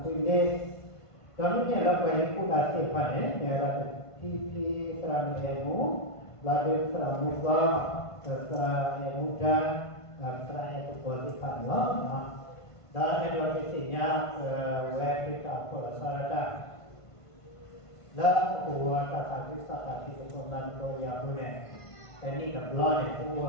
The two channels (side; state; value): right; late; 1.5 ms